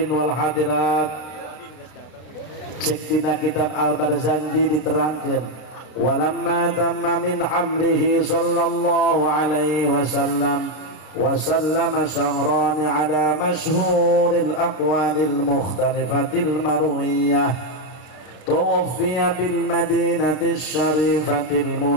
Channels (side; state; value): right; late; 32 ms